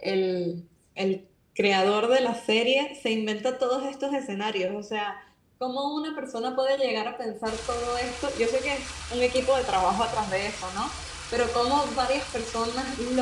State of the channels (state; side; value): identical; both; correlation 1.00